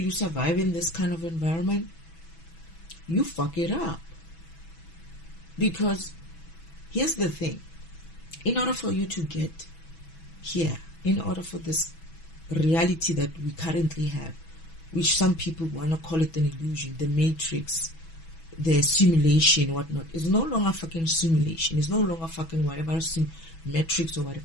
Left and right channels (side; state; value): right; late; 6.1 ms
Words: survive in this kind of environment? You fuck it up. Because here's the thing. In order for you to get here, in order for this reality that we currently have, which some people want to call it an illusion, the matrix, the simulation, whatnot, is no longer fucking simulation. It's no longer fucking whatever matrix or